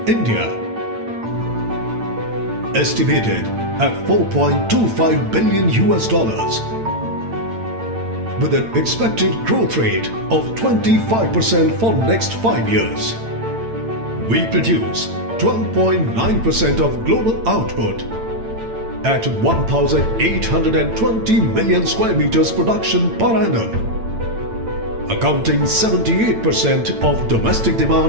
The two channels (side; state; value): left; late; 8.9 ms